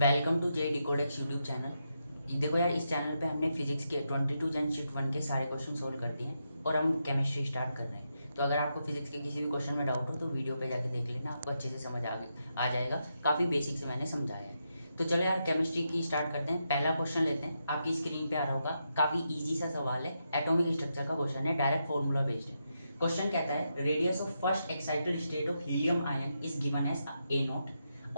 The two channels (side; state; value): both; inverted; correlation -0.84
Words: to J Decodex YouTube channel. देखो यार, इस चैनल पे हमने फिजिक्स के 22 जन शीट 1 के सारे क्वेश्चन सोल्व कर दिए हैं और हम केमिस्ट्री स्टार्ट कर रहे हैं। तो अगर आपको फिजिक्स के किसी भी क्वेश्चन में डाउट हो तो वीडियो पे जाके देख लेना, आपको अच्छे से समझ आ जाएगा। काफ़ी बेसिक से मैंने समझाया है। तो चलो यार, केमिस्ट्री की स्टार्ट करते हैं। पहला क्वेश्चन लेते हैं, आपकी स्क्रीन पे आ रहा होगा। काफ़ी ईजी सा सवाल है, एटॉमिक स्ट्रक्चर का क्वेश्चन है, डायरेक्ट फॉर्मूला बेस्ड है। क्वेश्चन कहता है radius of first excited state of helium ion is given as a naught